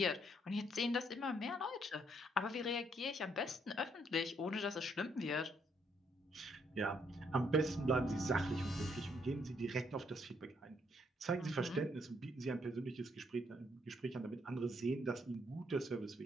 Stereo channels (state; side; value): normal; both; correlation 0.72